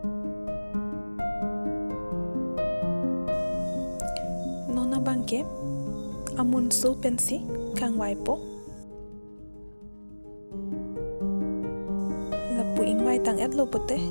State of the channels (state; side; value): inverted; both; correlation -1.00